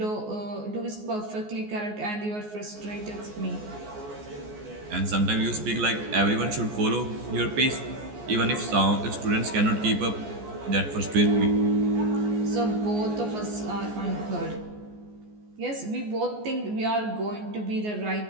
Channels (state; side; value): late; left; 14 ms